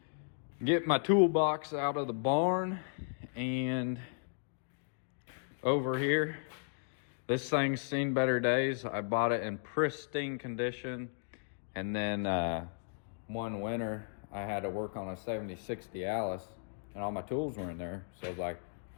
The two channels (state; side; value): silent; right; digital silence